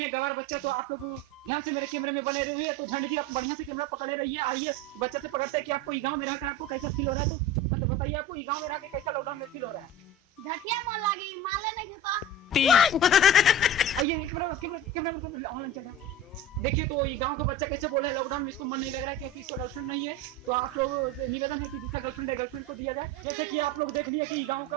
गवार बच्चा। तो आप लोग ध्यान से मेरे कैमरे में बने रहिए। तो झंड जी आप बढ़िया से कैमरा पकड़े रहिए। आइए बच्चे से पकड़ते हैं कि आपको गांव में रहकर आपको कैसा फील हो रहा है। तो मतलब बताइए आपको गांव में रह के कैसा लॉकडाउन में फील हो रहा है। झटिया मन लागी माले नहीं देता आइए कैमरा ऑनलाइन चल रहा है। देखिए तो ये गांव का बच्चा कैसे बोल रहा है लॉकडाउन में इसको मन नहीं लग रहा है क्योंकि इसका गर्लफ्रेंड नहीं है। तो आप लोग से निवेदन है कि जिसका गर्लफ्रेंड है गर्लफ्रेंड को दिया जाए। जैसे कि आप लोग देख लिए कि गांव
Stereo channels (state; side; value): normal; both; correlation 0.31